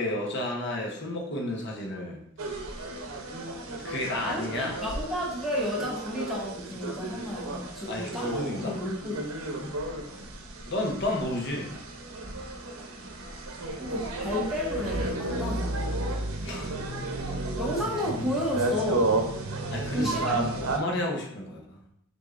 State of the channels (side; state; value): both; normal; correlation 0.23